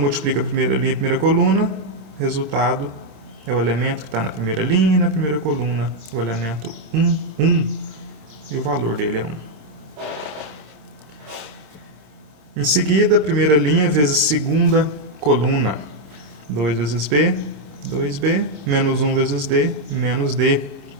a primeira linha e a primeira coluna, resultado é o elemento que está na primeira linha e na primeira coluna, o elemento 1, 1, e o valor dele é 1. Em seguida, primeira linha vezes segunda coluna, 2 vezes B, 2B, menos 1 vezes D, menos D.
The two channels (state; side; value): late; left; 26 ms